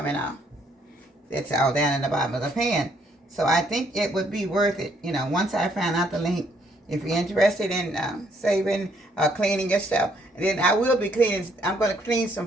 out. That's all down in the bottom of the pan. So I think it would be worth it, you know, once I find out the link. If you're interested in saving, cleaning your stuff, and then I will be cleaning. I'm going to clean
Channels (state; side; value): normal; both; correlation 0.69